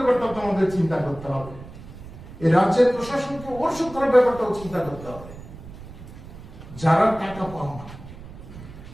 তো আমাদের চিন্তা করতে হবে, এই রাজ্যের প্রশাসনকে ওর সুরক্ষার ব্যাপারটাও চিন্তা করতে হবে। যারা টাকা পান না,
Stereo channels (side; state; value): right; noise; rumble, 15 dB below the sound